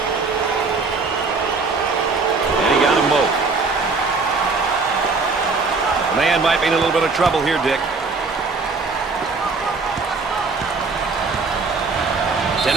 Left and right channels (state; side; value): quieter; left; 4.3 dB